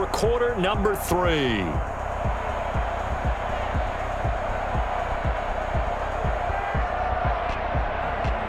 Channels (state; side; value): identical; both; correlation 1.00